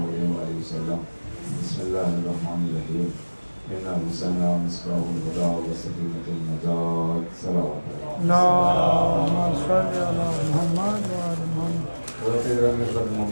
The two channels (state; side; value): inverted; both; correlation -1.00